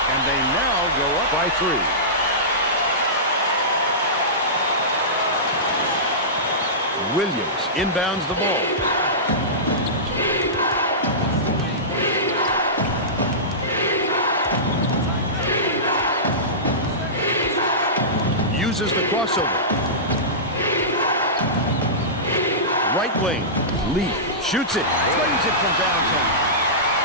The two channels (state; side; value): normal; both; correlation -0.19